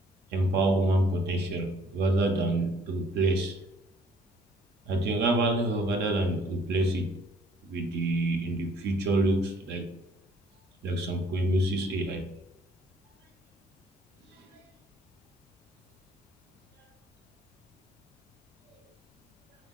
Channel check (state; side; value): normal; both; correlation 0.61